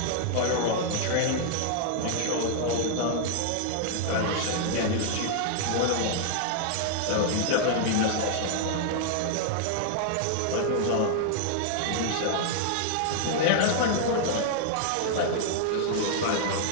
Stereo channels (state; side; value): different; both; correlation 0.00